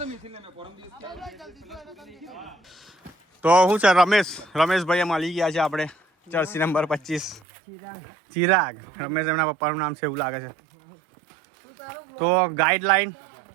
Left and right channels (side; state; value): left; drops out; at 7.4 s